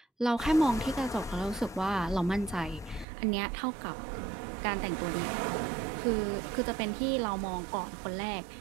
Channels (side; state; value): left; drops out; at 3.1 s